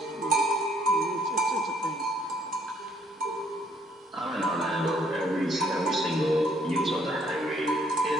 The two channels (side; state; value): both; normal; correlation 0.65